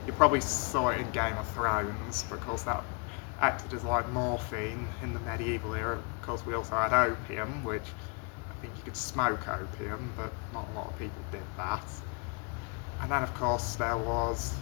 you probably saw it in Game of Thrones, because that acted as like morphine in the medieval era. Of course, we also had opium, which I think you could smoke opium, but not a lot of people did that. And then of course there was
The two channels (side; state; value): right; quieter; 34.4 dB